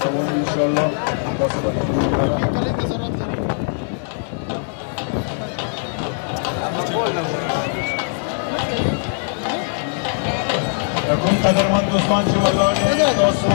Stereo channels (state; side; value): silent; right; digital silence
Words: روان ان شاء الله تاسو به کوم قدرمن دوستان چې ولاړ دي تاسو